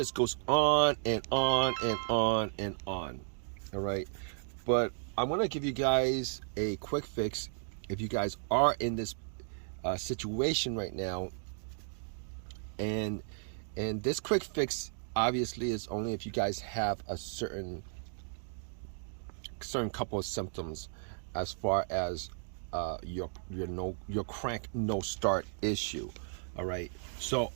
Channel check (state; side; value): silent; left; digital silence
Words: goes on and on and on and on. All right, but I want to give you guys a quick fix if you guys are in this situation right now. And this quick fix obviously is only if you guys have a certain couple of symptoms as far as your crank no start issue. All right, so